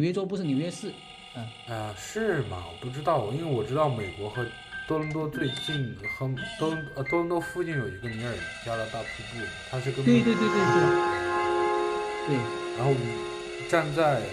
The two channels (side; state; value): both; identical; correlation 1.00